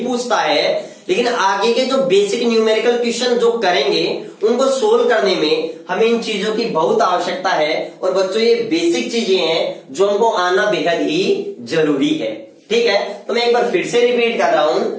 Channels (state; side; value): identical; both; correlation 1.00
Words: पूछता है, लेकिन आगे के जो बेसिक न्यूमेरिकल क्वेश्चन जो करेंगे उनको सोल्व करने में हमें इन चीजों की बहुत आवश्यकता है। और बच्चों ये बेसिक चीजें हैं जो हमको आना बेहद ही जरूरी है, ठीक है। तो मैं एक बार फिर से रिपीट कर रहा हूं,